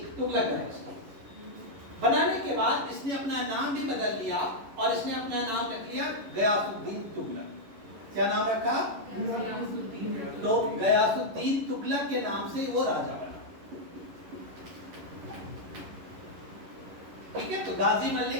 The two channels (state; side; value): late; left; 11 ms